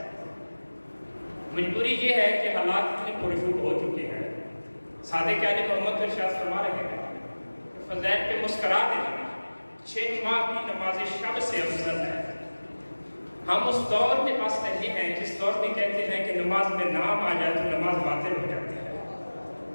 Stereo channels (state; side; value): inverted; both; correlation -1.00